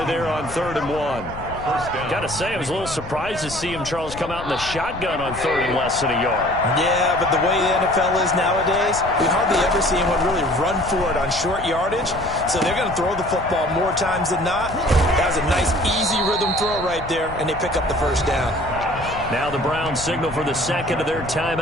there on 3rd and 1. Got to say, I was a little surprised to see him, Charles, come out in the shotgun on 3rd and less than a yard. Yeah, but the way the NFL is nowadays, we hardly ever see anyone really run for it on short yardage. So they're going to throw the football more times than not. That was a nice, easy rhythm throw right there, and they pick up the first down. Now the Browns signal for the second of their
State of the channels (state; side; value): noise; left; rumble, 13 dB below the sound